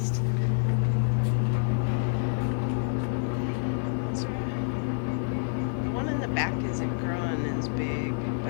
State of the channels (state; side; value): silent; right; digital silence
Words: The one in the back isn't growing as big,